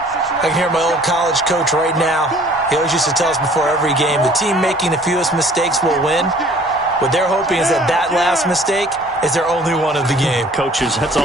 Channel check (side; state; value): both; normal; correlation 0.53